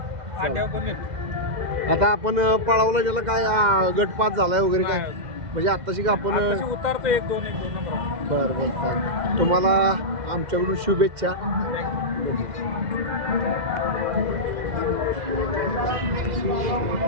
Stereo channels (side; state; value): left; late; 2.0 ms